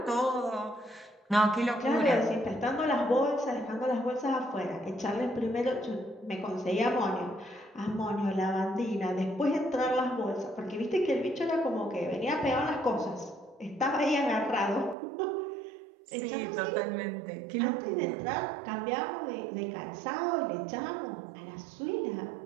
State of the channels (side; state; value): left; drops out; at 15.0 s